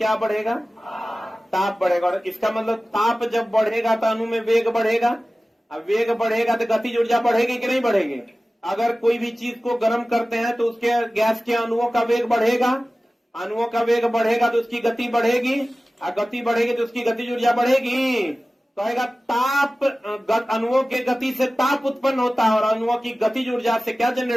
बढ़ेगा? ताप बढ़ेगा, और इसका मतलब ताप जब बढ़ेगा तो अणु में वेग बढ़ेगा। अब वेग बढ़ेगा तो गतिज ऊर्जा बढ़ेगी कि नहीं बढ़ेगी? अगर कोई भी चीज को गर्म करते हैं तो उसके गैस के अणुओं का वेग बढ़ेगा, अणुओं का वेग बढ़ेगा तो उसकी गति बढ़ेगी, और गति बढ़ेगी तो उसकी गतिज ऊर्जा बढ़ेगी। कहेगा ताप, अणुओं के गति से ताप उत्पन्न होता है, और अणुओं की गतिज ऊर्जा से क्या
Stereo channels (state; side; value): normal; both; correlation 0.96